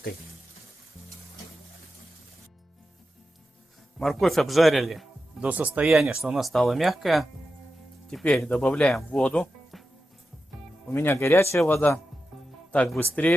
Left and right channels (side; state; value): both; normal; correlation 0.91